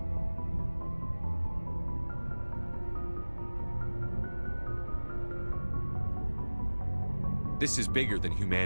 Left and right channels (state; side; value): inverted; both; correlation -1.00